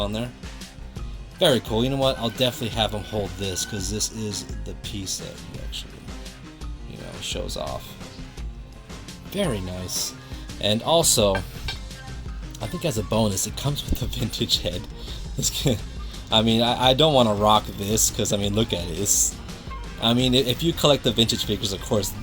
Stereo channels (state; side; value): identical; both; correlation 1.00